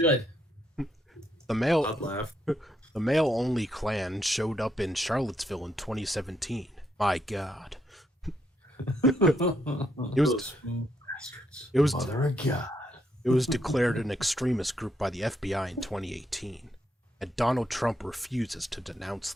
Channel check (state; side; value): normal; both; correlation 0.77